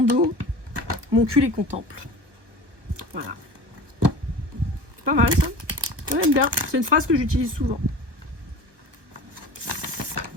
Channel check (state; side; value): late; left; 1.3 ms